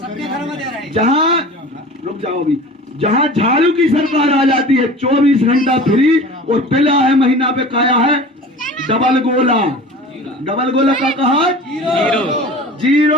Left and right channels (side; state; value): both; normal; correlation 0.39